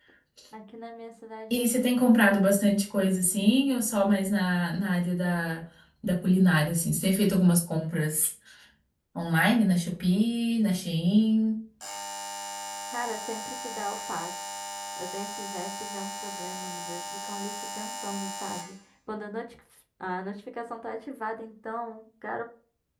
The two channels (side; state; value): both; identical; correlation 1.00